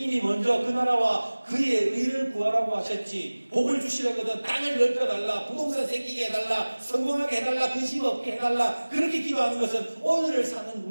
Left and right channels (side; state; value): both; inverted; correlation -1.00